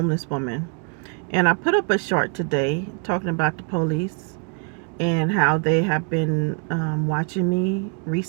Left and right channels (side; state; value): left; quieter; 38.1 dB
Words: woman, and I put up a short today talking about the police and how they have been watching me